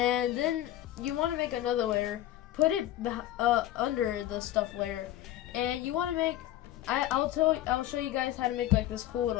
then you want to make another layer, put it under the stuff layer, and you want to make. I'll show you guys how to make like this cool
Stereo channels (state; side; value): quieter; right; 13.4 dB